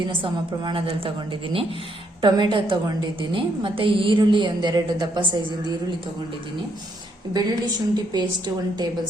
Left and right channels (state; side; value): normal; both; correlation 0.74